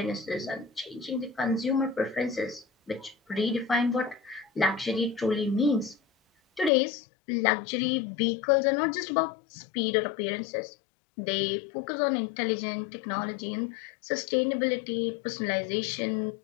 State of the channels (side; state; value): right; drops out; at 6.7 s